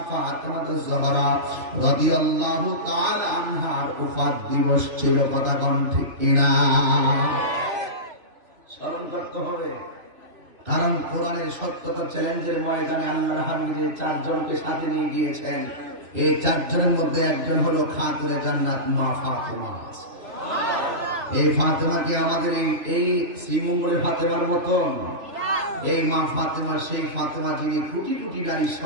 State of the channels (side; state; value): left; late; 3.0 ms